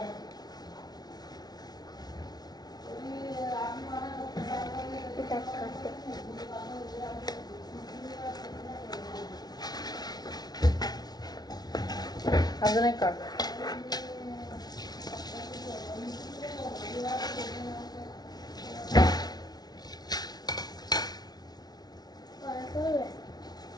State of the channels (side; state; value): right; late; 0.19 ms